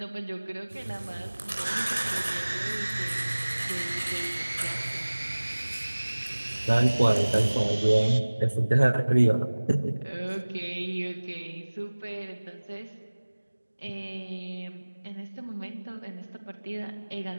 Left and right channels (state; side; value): inverted; both; correlation -1.00